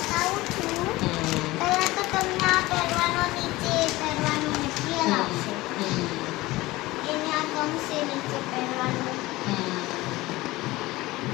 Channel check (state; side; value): quieter; right; 19.3 dB